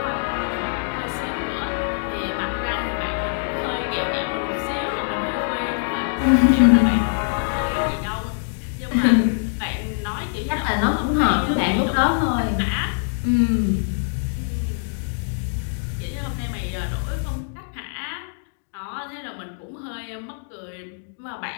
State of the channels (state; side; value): silent; right; digital silence